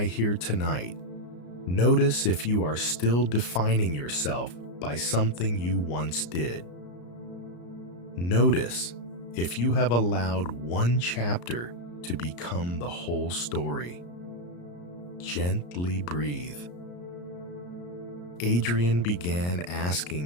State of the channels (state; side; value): late; right; 34 ms